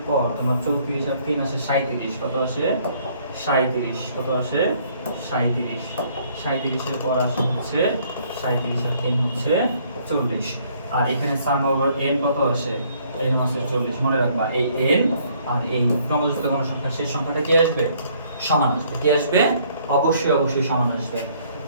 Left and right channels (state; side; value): inverted; both; correlation -0.63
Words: পর তোমার 34 আর 3 আসে 37। কত আসে? 37। কত আসে? 37। 37 এর পর আসে হচ্ছে 37 আর 3 হচ্ছে 40। আর এখানে সাম ওভার n কত আসে? n হচ্ছে 40। মনে রাখবা এই n আর এই ক্রমযুক্ত কোনো সংখ্যা শেষ সংখ্যাটা কি আসবে? সমান আসবে। কি আসবে? অবশ্যই সমান আসবে।